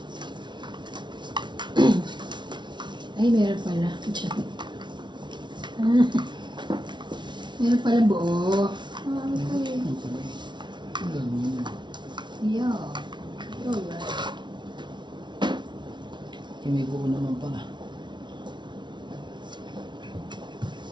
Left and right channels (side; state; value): left; late; 0.22 ms